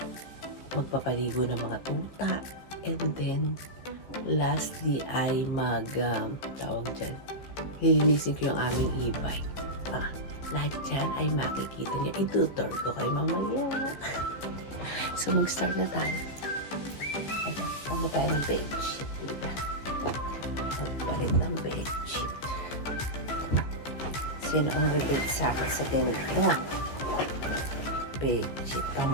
magpapaligo ng mga tuta. And then, lastly ay tawag dyan, lilinisin ko yung aming e-bike. Lahat dyan ay makikita nyo. Itutur ko kayo mamaya. So, mag-start na tayo. Ano tayo ng bedsheet? Magpalit ng bedsheet. Sino ang relate sa akin sa ganito? Bedsheet.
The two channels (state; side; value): late; right; 14 ms